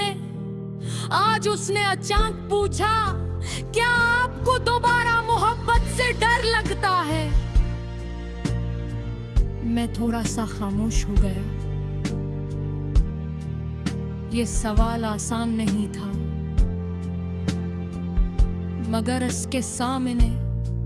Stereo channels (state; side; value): identical; both; correlation 1.00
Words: आज उसने अचानक पूछा, क्या आपको दोबारा मोहब्बत से डर लगता है? मैं थोड़ा सा खामोश हो गया। ये सवाल आसान नहीं था, मगर उसके सामने